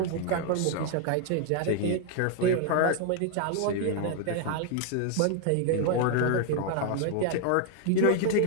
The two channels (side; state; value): both; different; correlation 0.01